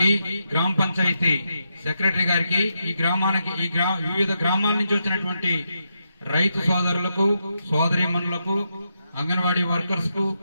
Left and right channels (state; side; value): inverted; both; correlation -0.84